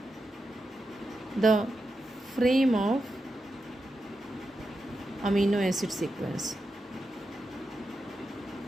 the frame of amino acid sequence.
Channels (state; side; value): normal; both; correlation 0.88